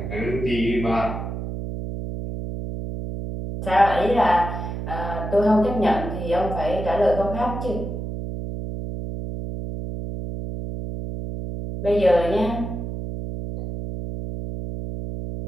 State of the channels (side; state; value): right; noise; hum, 6 dB below the sound